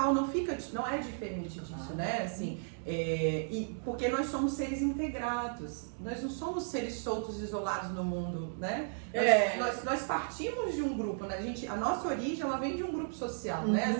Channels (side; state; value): left; silent; digital silence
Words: não é diferente disso, né, assim, e porque nós somos seres integrados, nós não somos seres soltos, isolados no mundo, né, nós partimos de um grupo, né, a nossa origem, ela vem de um grupo social, né,